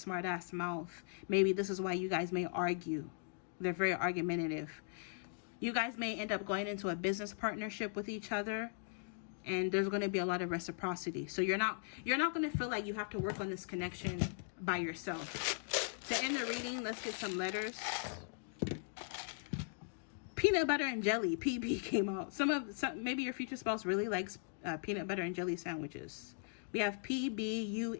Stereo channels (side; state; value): right; silent; digital silence